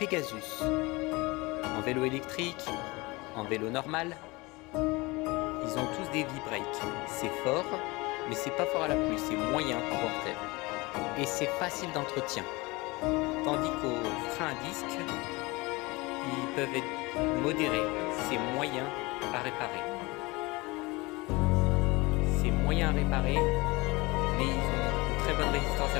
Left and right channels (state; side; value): quieter; right; 23.8 dB